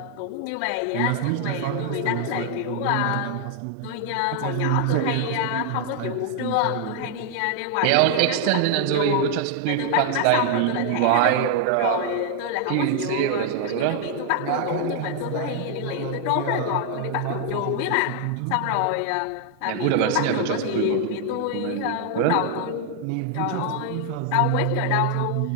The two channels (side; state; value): both; different; correlation 0.00